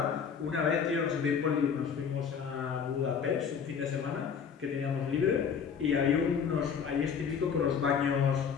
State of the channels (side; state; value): right; quieter; 6.9 dB